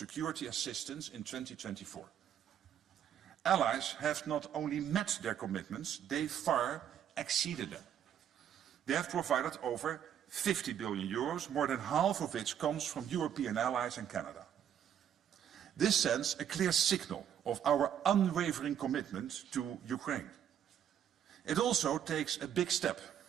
assistance in 2024. Allies have not only met their commitments, they far exceeded them. They have provided over 50 billion euros, more than half of which comes from European allies and Canada. This sends a clear signal of our unwavering commitment to Ukraine. It also takes a big step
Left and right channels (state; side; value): quieter; left; 9.6 dB